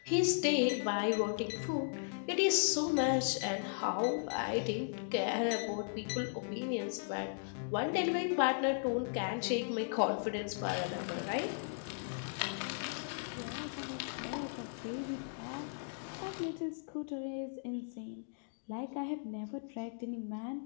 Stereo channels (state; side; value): silent; right; digital silence